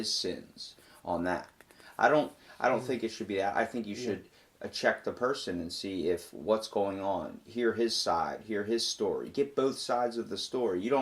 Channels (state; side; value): identical; both; correlation 1.00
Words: sins on that? I don't think it should be that. I think you should check the person and see if what's going on. Hear his side. Hear his story. Get both sides of the story. You